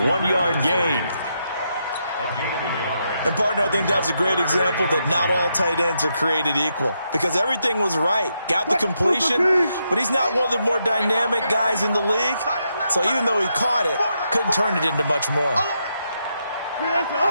1-yard gain. A gain of a yard. And, partner, I think that was a great example that not all tight ends are created equal, because everything was right. Got the completion, but he's not one of the more dynamic guys in the league. So even though he caught it, couldn't turn it into much more. On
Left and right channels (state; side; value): inverted; both; correlation -0.81